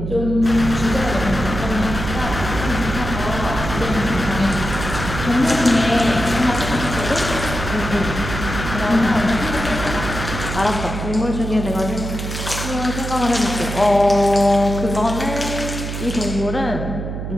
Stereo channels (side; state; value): right; noise; hum, 6 dB below the sound